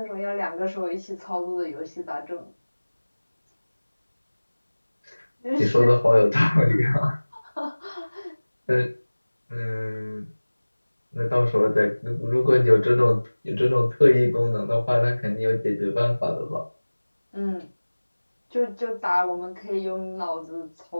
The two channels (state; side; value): inverted; both; correlation -1.00